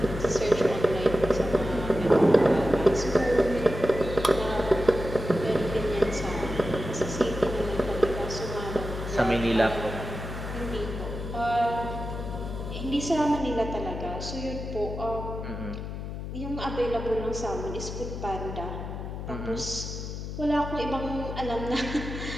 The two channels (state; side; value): noise; left; hum, 7 dB below the sound